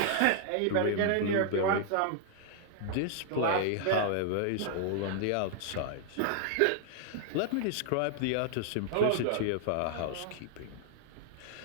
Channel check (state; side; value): different; both; correlation 0.00